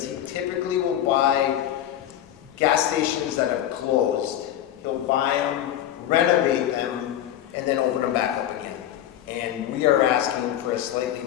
he typically will buy gas stations that are closed. He'll buy them, renovate them, and then open them back up again. And we are asking for a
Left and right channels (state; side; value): quieter; right; 11.6 dB